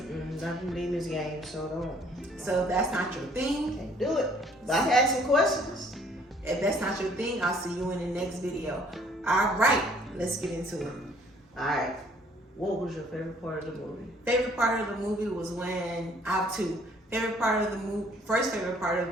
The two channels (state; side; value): normal; both; correlation 0.60